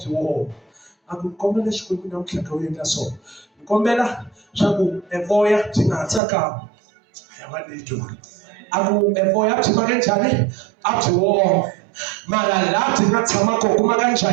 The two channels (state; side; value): drops out; left; at 6.2 s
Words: woma a ku kombela xikwembu namuntlha ka u endla so ni kombela swa ku evoya byi nga ha tsakami a va nitwa a ku evoya byi maka njhani a byi woma mara laha byi nga tshama kona ku maka